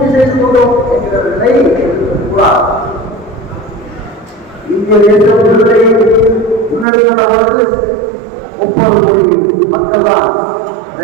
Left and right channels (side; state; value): left; drops out; at 6.9 s